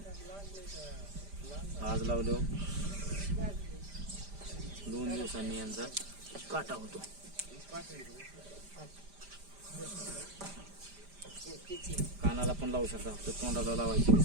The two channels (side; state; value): left; late; 5.0 ms